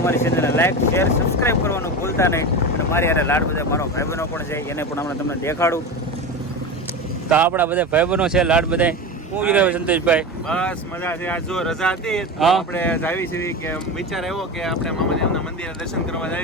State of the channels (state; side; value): normal; both; correlation 0.24